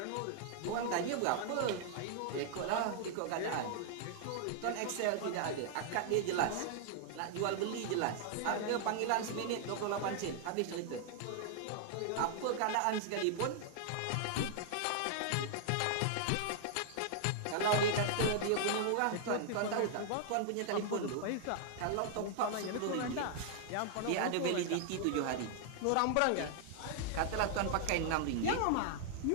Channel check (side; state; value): both; different; correlation -0.01